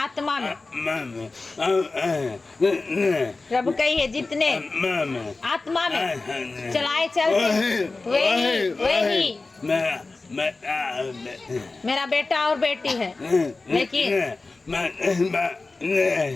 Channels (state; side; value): quieter; right; 3.6 dB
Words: में। प्रभु कही है जितने आत्मा में चलाए चलते वही मेरा बेटा और बेटी है।